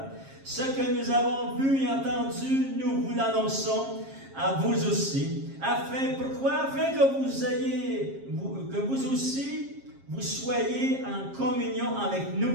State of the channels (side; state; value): left; late; 7.4 ms